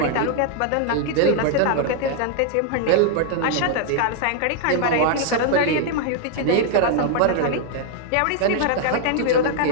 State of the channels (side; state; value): both; different; correlation 0.00